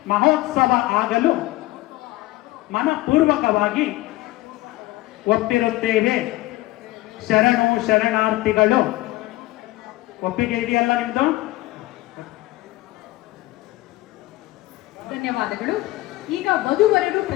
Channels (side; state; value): right; quieter; 18.2 dB